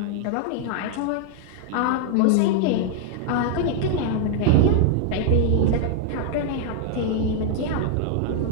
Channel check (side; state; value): both; different; correlation 0.00